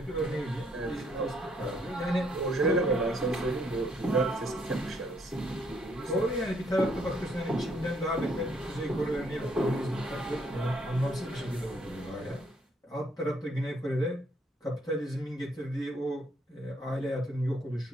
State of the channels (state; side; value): normal; both; correlation 0.69